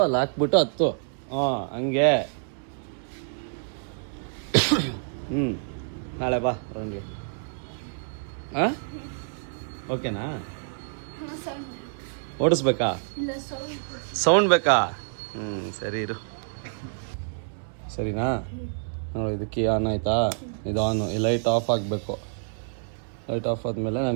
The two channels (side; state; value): left; silent; 60 dB below the other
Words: ಅಲ್ಲಿ ಹಾಕ್ಬಿಟ್ಟು ಹತ್ತು. ಹಂಗೆ. ನಾಳೆ ಬಾ ರೌಂಡ್ಗೆ. ಓಕೆನಾ? ಓಡಿಸ್ಬೇಕಾ? ಸೌಂಡ್ ಬೇಕಾ? ಸರಿ ಇರು. ಸರಿನಾ? ನೋಡಿ ಇದು ಕೀ ಆನ್ ಆಯ್ತಾ? ಇದು ಆನು. ಈ ಲೈಟ್ ಆಫ್ ಆಗಬೇಕು. ಲೈಟ್ ಆಫ್ ಆದಮೇಲೆ